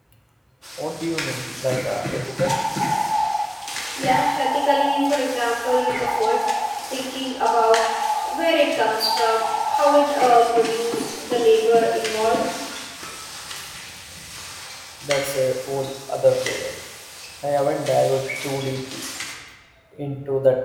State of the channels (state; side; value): identical; both; correlation 1.00